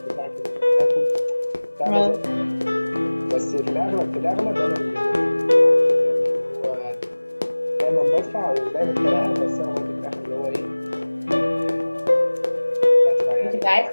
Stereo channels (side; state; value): both; inverted; correlation -1.00